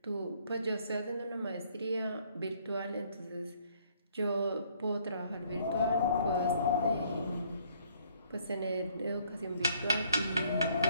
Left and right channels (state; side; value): inverted; both; correlation -0.64